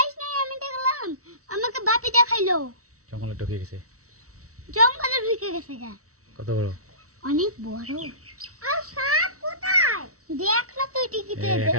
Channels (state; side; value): late; left; 0.65 ms